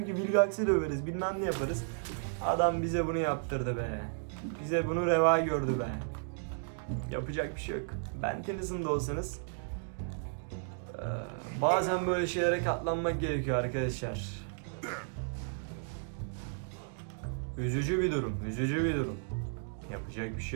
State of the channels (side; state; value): left; silent; digital silence